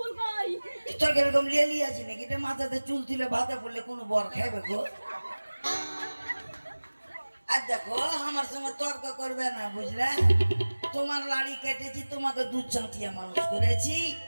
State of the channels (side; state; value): both; inverted; correlation -1.00